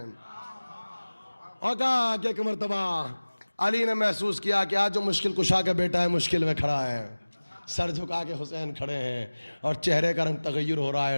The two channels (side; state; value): both; inverted; correlation -1.00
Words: اور کہا کہ ایک مرتبہ علی نے محسوس کیا کہ آج جو مشکل کشا کا بیٹا ہے مشکل میں کھڑا ہے۔ سر جھکا کے حسین کھڑے ہیں، اور چہرے کا رنگ تغیر ہو رہا ہے،